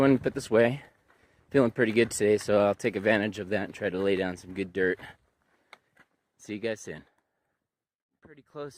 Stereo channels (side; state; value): both; identical; correlation 1.00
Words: and put this away. Feeling pretty good today, so I'll take advantage of that and try to lay down some good dirt. See you guys soon. Pretty